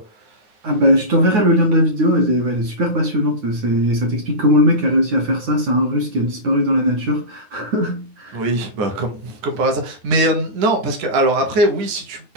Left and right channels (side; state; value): left; late; 9.5 ms